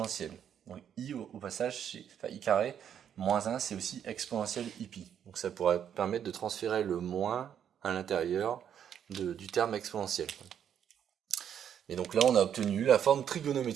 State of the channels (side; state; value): left; quieter; 9.0 dB